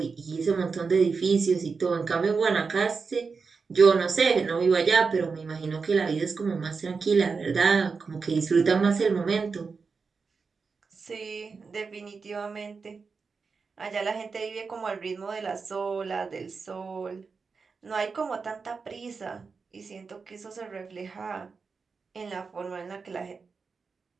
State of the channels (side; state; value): left; quieter; 4.9 dB